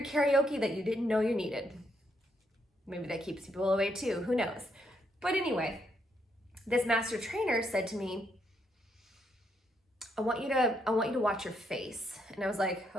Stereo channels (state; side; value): normal; both; correlation 0.76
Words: karaoke that you didn't know you needed. Maybe that keeps people away too, who knows? But anyway, this master trainer said to me, I want you to watch your face. And I was like,